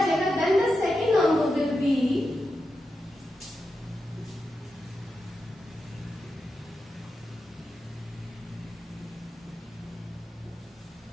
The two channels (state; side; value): normal; both; correlation 0.89